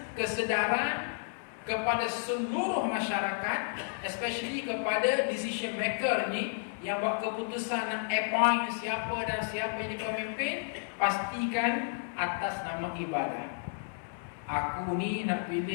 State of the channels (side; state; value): right; silent; 56 dB below the other